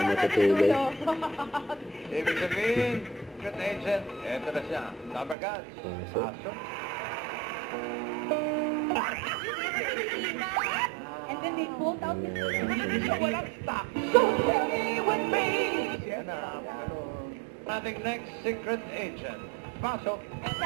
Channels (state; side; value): drops out; left; at 5.4 s